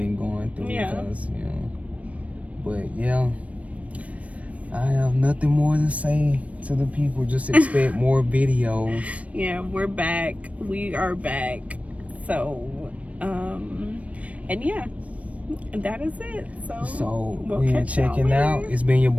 going through because, you know. But yeah, I have nothing more to say to the people. Just expect more videos. Yeah, we're back. We are back. So, and yeah, that is it. So we'll we are checking out. It's been your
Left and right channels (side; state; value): left; late; 0.066 ms